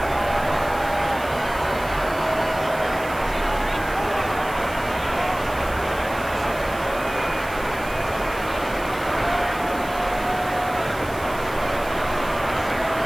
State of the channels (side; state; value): right; noise; hiss, 17 dB below the sound